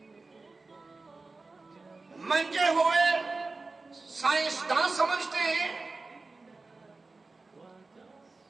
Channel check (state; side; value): quieter; left; 3.7 dB